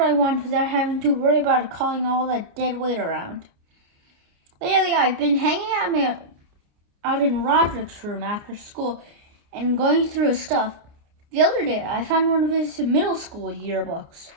I want without having to worry about calling all that dead weight around. Lately, I've been hanging out in Roderick's room after school and going through his stuff. The other day, I found one of his middle school yearbooks.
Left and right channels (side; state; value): left; late; 29 ms